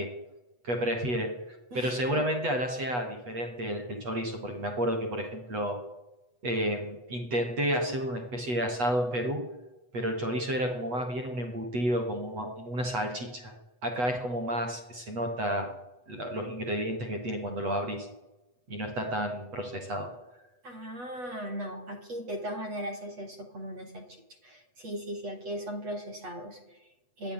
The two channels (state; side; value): late; left; 8.2 ms